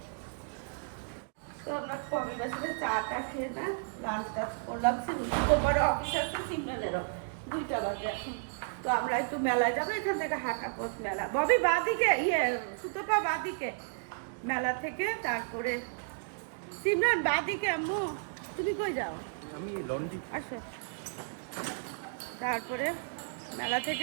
তো আমরা কবিতার সাথে চাটা খেয়ে না লাঞ্চ টাচ করলাম। তোমার অফিস আছে, সিমরানেরও 2টা বাজে এখন। তো আমরা একটু মেলায় যাবো, এখান থেকে হাঁটা পথ মেলা। ববি বাদিকে, সুতোপা বাদিকে মেলা থেকে, তারপরে সিমরান বাদিকে। আম্মু তুমি কই যাও? আমি লন্ডি। আসো। তারপরে মেলা থেকে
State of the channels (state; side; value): silent; left; digital silence